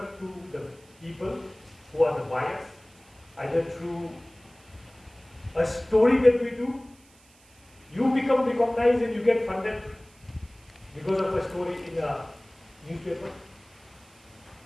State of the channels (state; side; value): noise; right; hiss, 28 dB below the sound